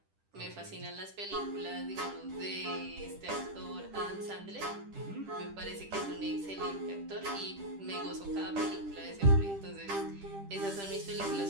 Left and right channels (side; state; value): left; late; 10 ms